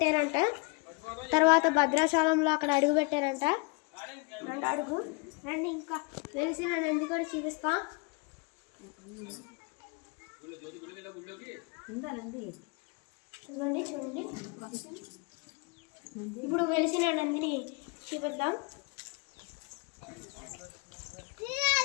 తర్వాత భద్రాచలంలో అక్కడ అడుగు పెట్టారంట. అడుగు రండి, ఇంకా వెలిసిన నంది కూడా చూపిస్తాం. చూడండి చూడండి, ఇప్పుడు వెలిసిన నందిని చూపిద్దాం.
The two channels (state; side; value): quieter; right; 30.3 dB